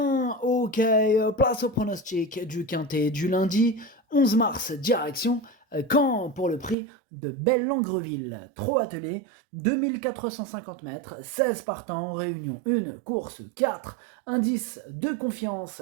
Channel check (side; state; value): left; drops out; at 6.8 s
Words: Ok, place au pronostic du quintet du lundi 11 mars, direction Caen pour le prix de Belle-Langreville. Trop attelé, 2450 mètres, 16 partants, réunion 1, course 4, indice de confiance